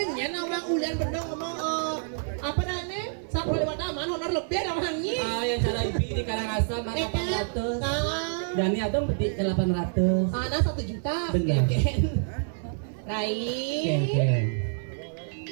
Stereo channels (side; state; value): left; silent; 56 dB below the other